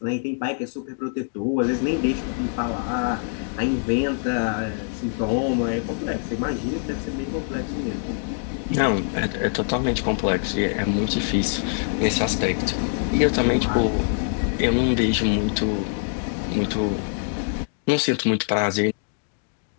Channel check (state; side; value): silent; right; digital silence